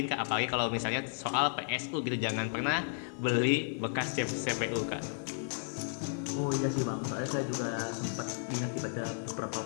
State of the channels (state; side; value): silent; right; 55 dB below the other